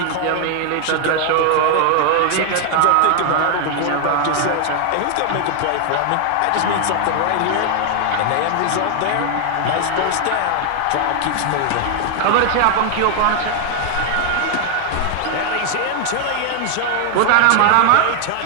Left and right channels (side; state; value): both; different; correlation 0.00